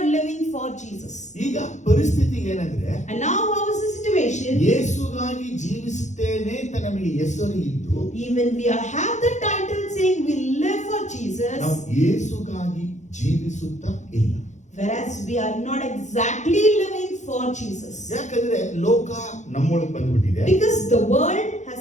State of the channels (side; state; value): right; late; 0.34 ms